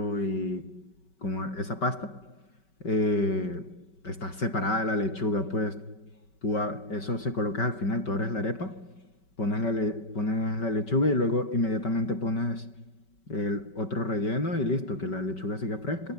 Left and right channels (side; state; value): right; late; 5.3 ms